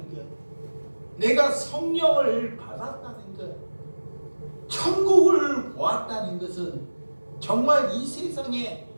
것, 내가 성령을 받았다는 것, 천국을 보았다는 것은 정말 이 세상에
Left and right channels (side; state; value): both; inverted; correlation -1.00